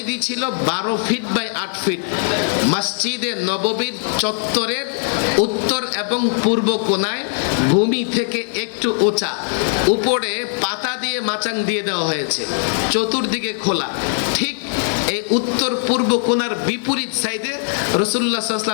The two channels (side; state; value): right; silent; 66 dB below the other